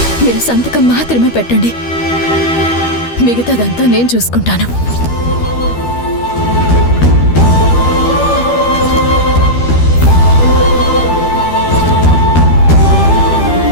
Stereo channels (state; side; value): late; right; 13 ms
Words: మీరు సంతకం మాత్రమే పెట్టండి, మిగతాదంతా నేను చూసుకుంటాను.